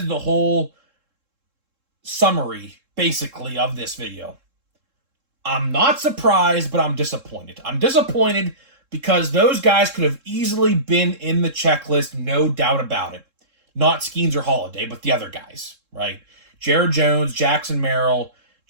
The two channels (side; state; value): left; late; 3.7 ms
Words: the whole summary, basically, of this video. I'm not surprised, but I'm disappointed. I'm disappointed because those guys could have easily been in the checklist, no doubt about it. Not Skeens or Holiday, but the other guys, right? Jared Jones, Jackson Merrill,